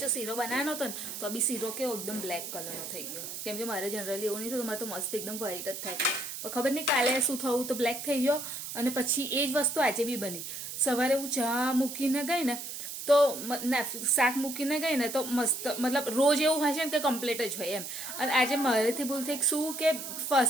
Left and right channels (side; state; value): right; noise; hiss, 8 dB below the sound